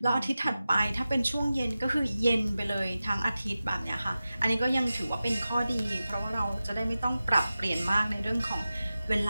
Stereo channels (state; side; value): inverted; both; correlation -0.94